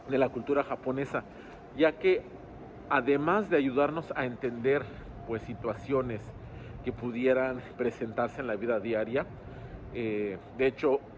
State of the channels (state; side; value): identical; both; correlation 1.00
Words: de la cultura japonesa, ya que además de ayudarnos a entender pues situaciones que pudieran presentarse en la vida diaria, de hecho